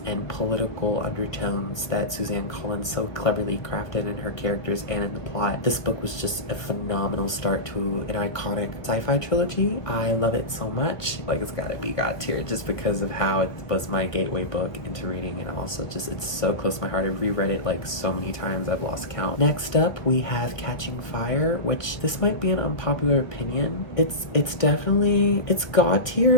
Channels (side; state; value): right; late; 1.3 ms